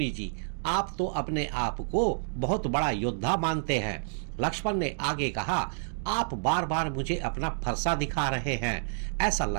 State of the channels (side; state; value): left; silent; digital silence